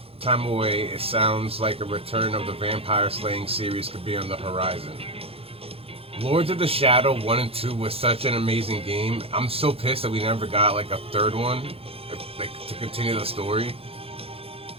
time away, it sounds like a return of the vampire slaying series could be on the horizon. Lords of the Shadow 1 and 2 was such an amazing game. I'm so pissed that we never got like a third one, like to continue the story.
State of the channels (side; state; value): left; late; 0.28 ms